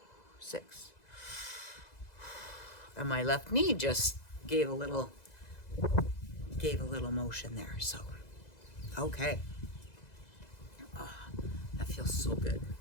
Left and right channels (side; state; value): right; late; 2.0 ms